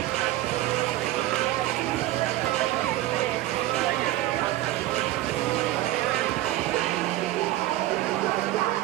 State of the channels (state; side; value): quieter; left; 15.5 dB